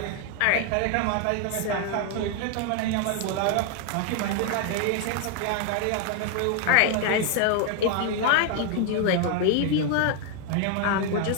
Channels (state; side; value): different; both; correlation 0.00